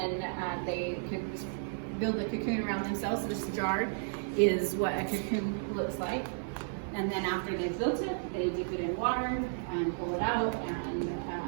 they build a cocoon around themselves. So this jar is what a cocoon looks like. And then after they've built it, they dip it in water and pull it out and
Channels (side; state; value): left; silent; 56 dB below the other